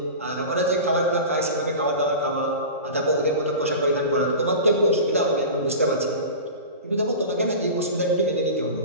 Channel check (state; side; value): inverted; both; correlation -0.31